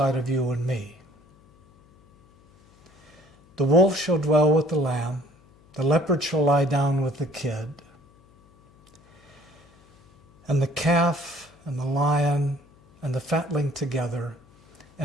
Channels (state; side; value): noise; left; hum, 29 dB below the sound